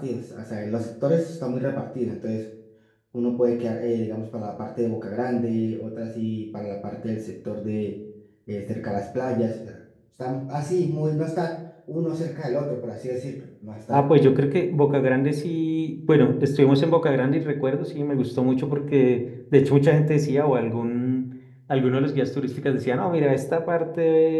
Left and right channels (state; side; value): identical; both; correlation 1.00